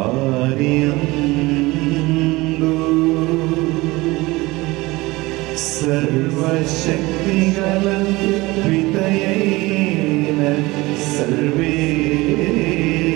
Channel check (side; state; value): left; quieter; 21.3 dB